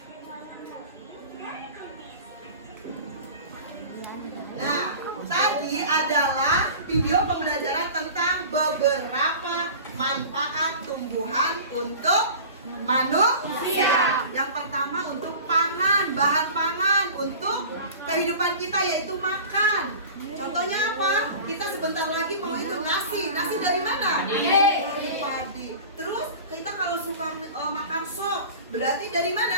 dan warna kuning dari kumis. Nah, tadi adalah video pembelajaran tentang beberapa manfaat tumbuhan untuk manusia. Yang pertama untuk pangan, bahan pangan untuk kehidupan kita yaitu makan. Contohnya apa? Kita sebentar lagi mau itu nasi. Nasi dari mana? Dari padi. Terus kita kalau suka makan sop, berarti dari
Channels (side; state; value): both; inverted; correlation -0.38